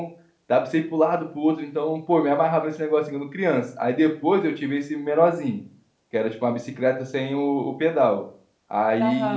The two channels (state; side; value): identical; both; correlation 1.00